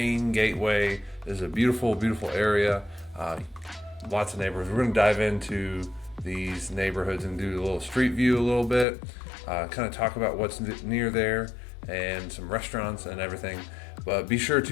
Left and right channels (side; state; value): right; drops out; at 8.8 s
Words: gateway. This is a beautiful, beautiful area. Lots of neighborhoods. We're going to dive into these neighborhoods and do a little street view a little bit, kind of talk about what's near there and some restaurants and everything. But be sure